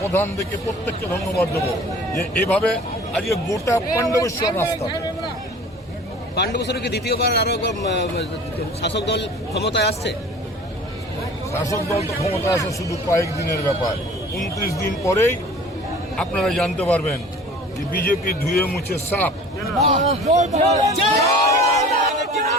দিকে, প্রত্যেককে ধন্যবাদ দেবো যে এভাবে আজকে গোটা পাণ্ডবেশ্বর রাস্তা। পাণ্ডবেশ্বরে কি দ্বিতীয়বার আরো শাসক দল ক্ষমতায় আসছে? শাসক দল তো ক্ষমতা আসে শুধু কয়েকদিনের ব্যাপার। 29 দিন পরেই আপনারা জানতে পারবেন যে বিজেপি ধুয়ে মুছে সাপ।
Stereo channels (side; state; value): both; normal; correlation 0.45